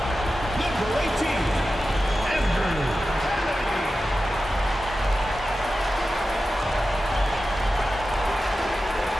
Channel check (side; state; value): both; normal; correlation 0.93